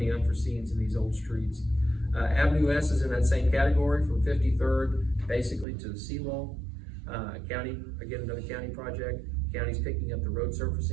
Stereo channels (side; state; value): left; drops out; at 5.7 s